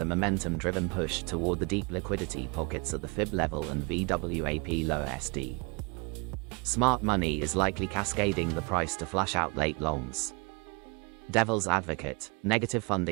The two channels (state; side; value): quieter; left; 31.3 dB